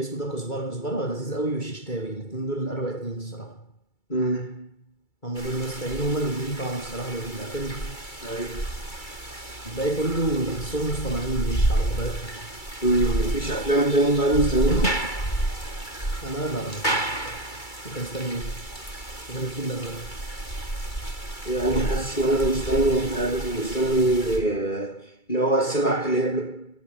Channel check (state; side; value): late; right; 2.3 ms